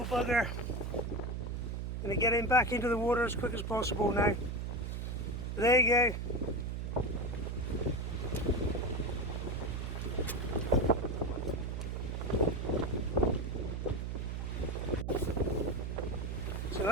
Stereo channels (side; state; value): right; noise; hum, 3 dB below the sound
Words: bugger. Gonna get him back into the water as quick as possible now. There you go. So